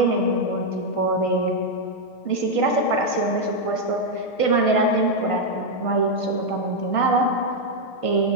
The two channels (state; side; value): late; right; 6.6 ms